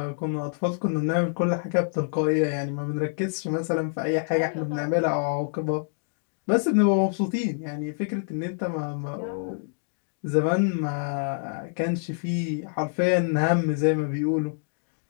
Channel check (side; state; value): right; silent; digital silence